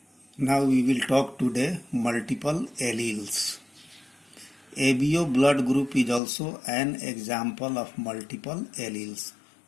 Now we will talk today multiple alleles. ABO blood group is also an example of multiple alleles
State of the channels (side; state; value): right; drops out; at 6.2 s